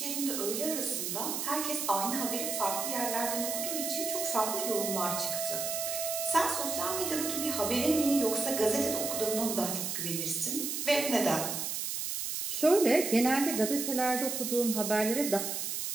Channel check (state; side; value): noise; right; hiss, 3 dB below the sound